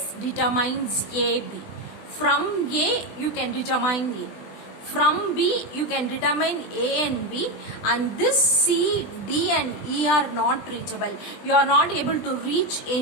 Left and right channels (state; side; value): late; right; 20 ms